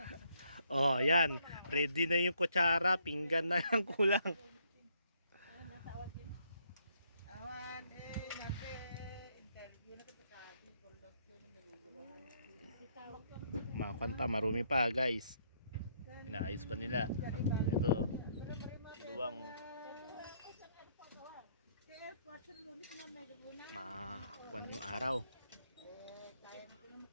Oh, yan. Ready na yung kutsara, pinggan na lang kulang. Awan eh, nante interview na kita sabi. Kulot yun ang naguguluhan. Makakanta, marumi pa guys. Inaayos pa nila. Ito, luwang makakuan yung araw.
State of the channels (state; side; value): inverted; both; correlation -0.70